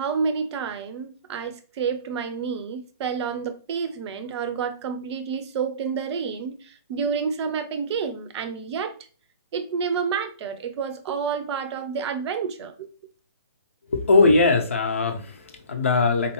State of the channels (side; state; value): both; inverted; correlation -0.47